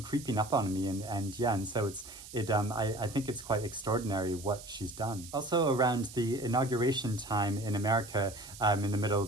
creeping up on me. And so I think it's quite extraordinary what she's done. Also around the inauguration time in America, in the middle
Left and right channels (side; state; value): right; noise; hiss, 15 dB below the sound